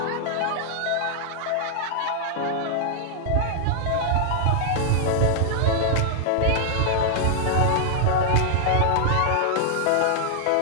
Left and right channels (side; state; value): both; different; correlation -0.01